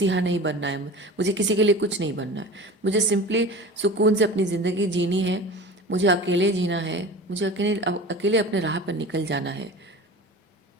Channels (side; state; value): both; normal; correlation 0.35